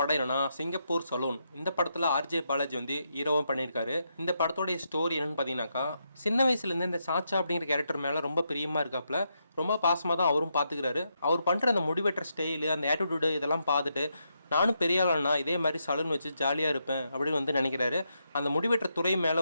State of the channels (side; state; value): both; inverted; correlation -0.81